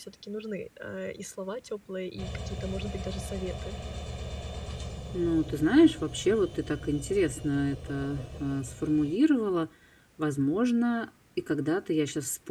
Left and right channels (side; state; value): both; identical; correlation 1.00